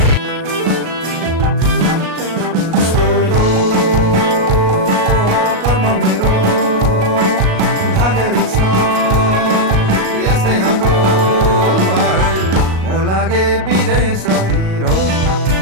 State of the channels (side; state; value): left; late; 37 ms